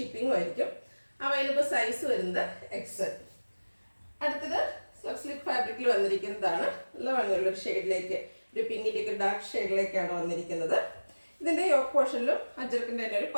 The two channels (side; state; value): both; inverted; correlation -1.00